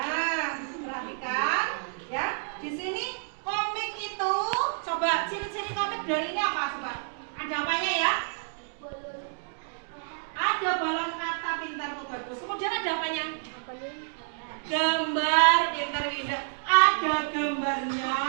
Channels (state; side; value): silent; left; digital silence